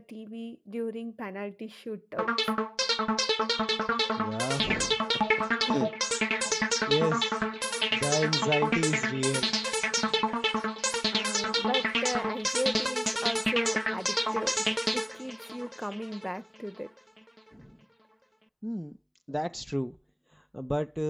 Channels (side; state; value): both; identical; correlation 1.00